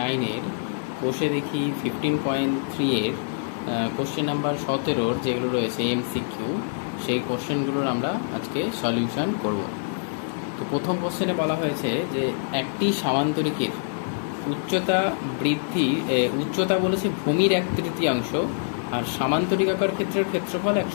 কোষে দেখি 15.3 এর কোশ্চেন নাম্বার 17 যেগুলো রয়েছে এমসিকিউ, সেই কোশ্চেনগুলোর আমরা আজকে সলিউশন করব। তো প্রথম কোশ্চেনে বলা হয়েছে যে একটি সামান্তরিকের উচ্চতা বলেছে ভূমির 1/3, আর সামান্তরিকাকার ক্ষেত্রের ক্ষেত্রফল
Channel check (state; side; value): silent; right; digital silence